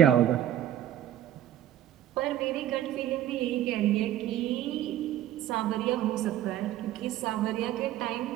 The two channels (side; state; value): left; quieter; 12.0 dB